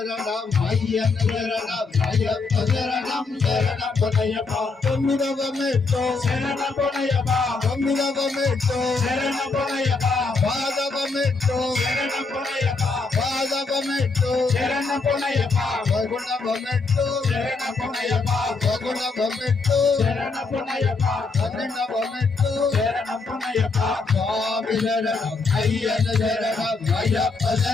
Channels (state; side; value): quieter; right; 4.1 dB